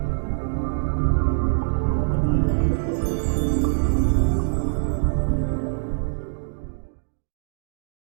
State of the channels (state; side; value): silent; left; digital silence